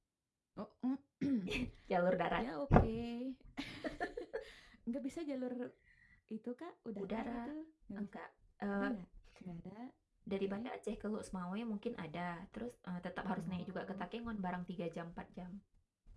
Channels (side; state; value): both; identical; correlation 1.00